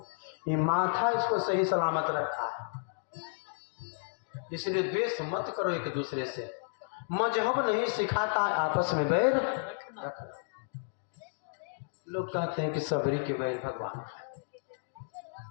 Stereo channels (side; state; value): right; silent; digital silence